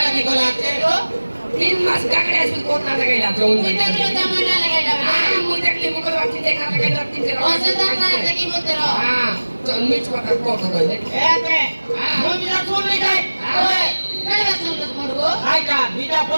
ko latte. Tin mas kakड़े asal kota nak kaya jauh. Kita kalau zaman nak lagi dah. Mudah kali mukul waktu tengah nak kaya tin jero. Oh sedang nak lagi mutero. Jangan micuk kata kota tu ni. Eh te. Mo bisa sun le kai. Oi, kalau sungut murgo. Hai ka bisa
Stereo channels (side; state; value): both; inverted; correlation -1.00